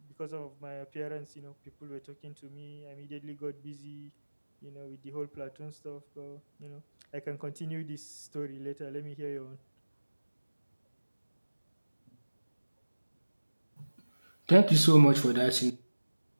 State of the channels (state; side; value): inverted; both; correlation -1.00